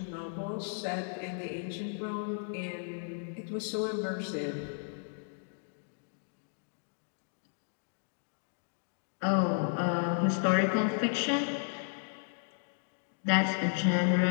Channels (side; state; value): right; silent; digital silence